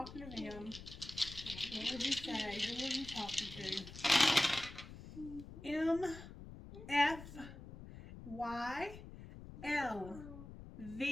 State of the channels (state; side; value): noise; left; rumble, 14 dB below the sound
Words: to them. What would you say? Who are you talking to? M, F, Y, L,